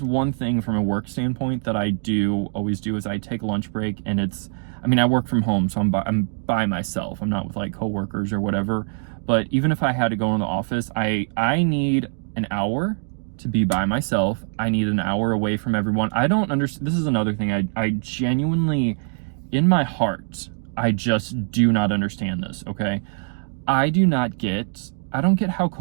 thing from a work standpoint that I do always do, is I take a lunch break. And I work from home, so I'm by myself. I'm not with, like, coworkers or whatever. But even if I had to go in the office, I need an hour to be by myself. I need an hour away from everyone. I don't understand. This is another thing. I genuinely, in my heart, I just do not understand this, okay? I don't get how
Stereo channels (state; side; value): silent; left; digital silence